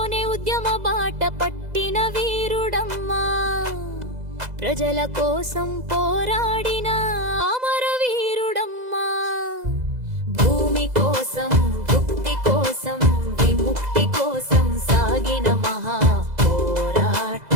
ఉద్యమ బాట పట్టిన వీరుడమ్మా ప్రజల కోసం పోరాడిన అమరవీరుడమ్మా భూమి కోసం భుక్తి కోసం విముక్తి కోసం సాగిన మహా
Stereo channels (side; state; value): left; late; 2.0 ms